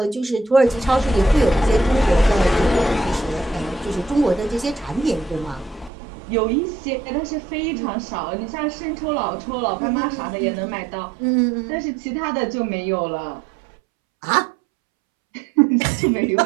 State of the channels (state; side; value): drops out; left; at 5.9 s